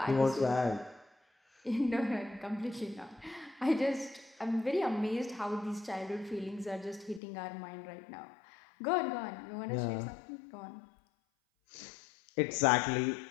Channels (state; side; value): drops out; right; at 7.2 s